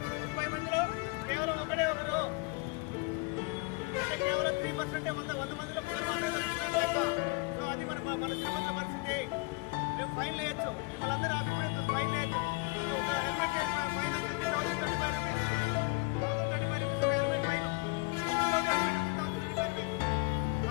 30 మందిలో కేవలం ఒకడే ఒకరు, కేవలం 3% 100 మందిలో. సో అది మన తిరుపతి పరిస్థితి. మేము ఫైన్ వేయచ్చు, వాళ్ళందరూ అభిప్రాయం ఫైన్ వేయచ్చు. హెల్మెట్ హెల్మెట్ ఫైన్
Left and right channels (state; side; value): quieter; right; 27.3 dB